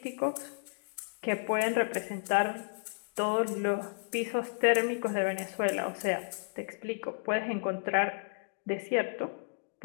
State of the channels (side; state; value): right; silent; digital silence